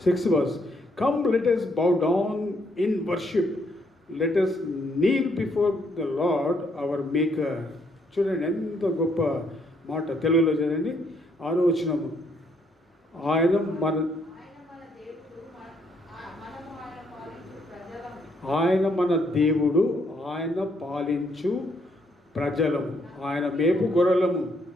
6th verse, come let us bow down in worship, let us kneel before the Lord our Maker. చూడండి ఎంత గొప్ప మాట. తెలుగులో చదండి 6వ వచనము. ఆయన మన దేవుడు, ఆయన పాలించు ప్రజలము, ఆయన మేపు గొర్రెలము.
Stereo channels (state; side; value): normal; both; correlation 0.72